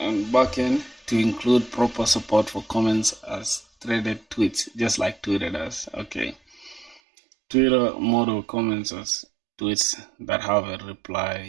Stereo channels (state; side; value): drops out; left; at 7.0 s